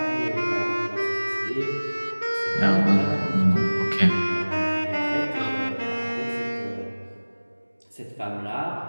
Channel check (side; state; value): both; inverted; correlation -1.00